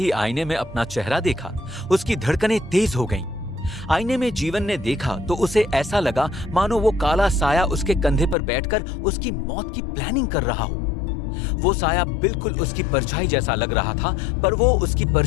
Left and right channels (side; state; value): right; drops out; at 8.3 s